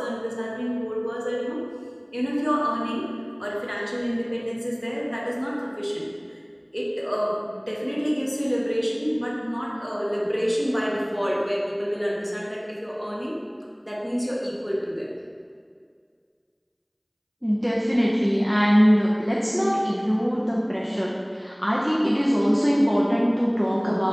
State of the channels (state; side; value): identical; both; correlation 1.00